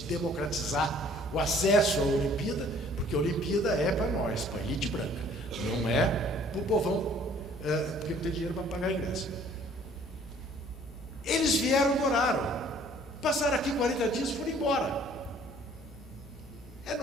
democratizar o acesso à Olimpíada, porque a Olimpíada é para nós, para a elite branca, não é para o povão, porque não tem dinheiro para pagar ingresso. Eles vieram, moraram, passaram aqui 40 dias e foram embora. É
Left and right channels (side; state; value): both; normal; correlation 0.56